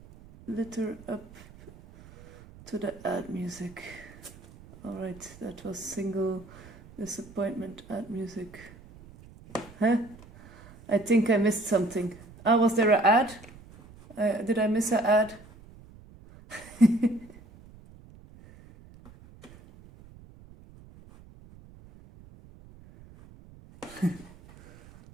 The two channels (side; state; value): right; noise; rumble, 21 dB below the sound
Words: litter up to the add music. Alright, that was single disappointment add music. Huh? I think I missed something. Ah, was there an ad? Did I miss an ad?